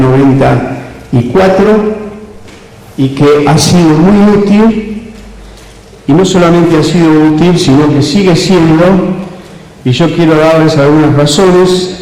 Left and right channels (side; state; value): both; identical; correlation 1.00